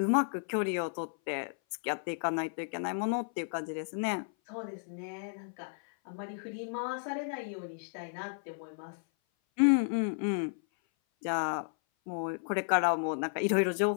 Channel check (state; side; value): silent; right; 56 dB below the other